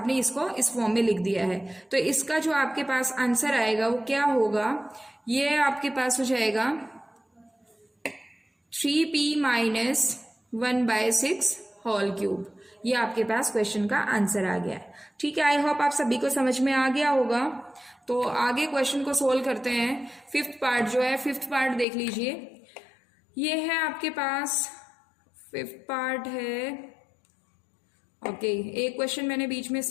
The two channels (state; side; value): drops out; right; at 21.9 s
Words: इसको इस फॉर्म में लिख दिया है। तो इसका जो आपके पास आंसर आएगा वो क्या होगा? ये आपके पास हो जाएगा 3p माइनस 1/6 होल क्यूब। ये आपके पास क्वेश्चन का आंसर आ गया है। ठीक है, आई होप आप सभी को समझ में आ गया होगा। तो आगे क्वेश्चन को सोल्व करते हैं। फिफ्थ पार्ट जो है, फिफ्थ पार्ट देख लीजिए। ये है आपके पास फिफ्थ पार्ट है। ओके, एक क्वेश्चन मैंने बीच में